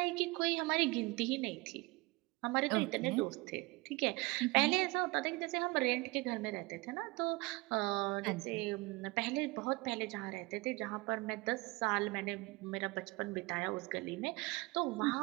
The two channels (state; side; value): quieter; left; 24.0 dB